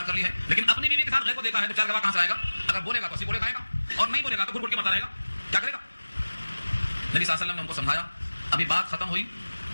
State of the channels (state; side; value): inverted; both; correlation -1.00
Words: کر لی ہے، لیکن اپنی بیوی کے ساتھ غیر کو دیکھا ہے تو 4 گواہ کہاں سے آئے گا؟ اگر بولے گا تو 80 کوڑے کھائے گا، اور نہیں بولے گا تو گھٹ گھٹ کے مرتا رہے گا. کیا کرے گا؟ نبی صلی اللہ علیہ وسلم نے ان کو سمجھایا. ابھی بات ختم ہوئی